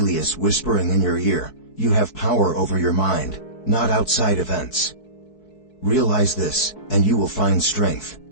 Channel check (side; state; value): right; late; 4.6 ms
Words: whispering in your ear, "You have power over your mind, not outside events." Realize this, and you will find strength.